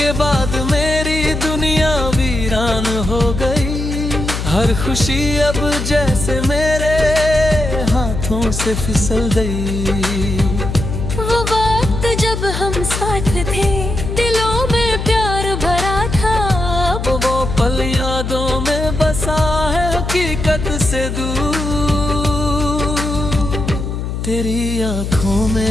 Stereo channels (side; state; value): left; noise; hum, 4 dB below the sound